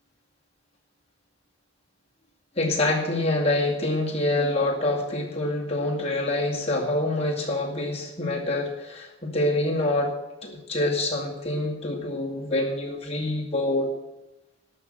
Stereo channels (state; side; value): normal; both; correlation 0.22